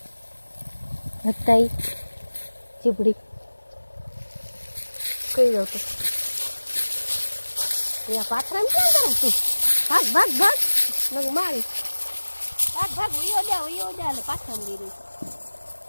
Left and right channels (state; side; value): inverted; both; correlation -1.00